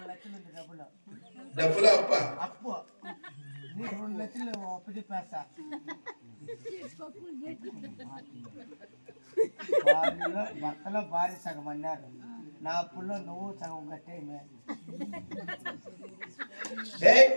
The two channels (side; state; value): both; inverted; correlation -1.00